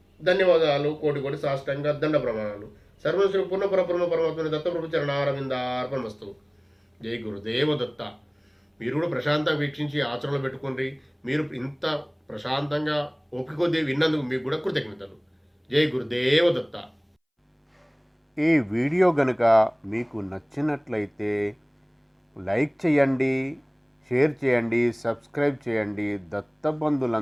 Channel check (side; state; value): both; identical; correlation 1.00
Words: ధన్యవాదాలు, కోటి సాష్టాంగ దండ ప్రమాణాలు. సర్వం శ్రీ పూర్ణ పరబ్రహ్మ పరమాత్మ దత్తప్రభు చరణారవిందార్పణమస్తు. జై గురుదేవ దత్త. మీరు కూడా ప్రశాంతంగా వీక్షించి ఆచరణలో పెట్టుకోండి. మీరు ఇంత ప్రశాంతంగా ఓపిక కొద్దీ విన్నందుకు మీకు కూడా కృతజ్ఞతలు. జై గురుదేవ దత్త. ఈ వీడియో గనుక మీకు నచ్చినట్లయితే లైక్ చేయండి, షేర్ చేయండి, సబ్స్క్రైబ్ చేయండి,